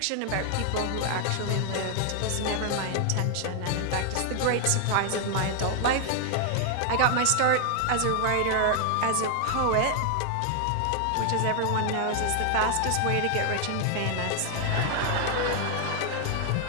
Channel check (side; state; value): both; different; correlation 0.00